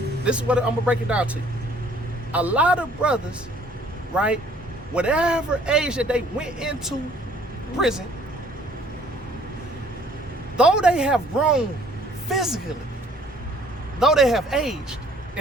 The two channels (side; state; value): both; normal; correlation 0.58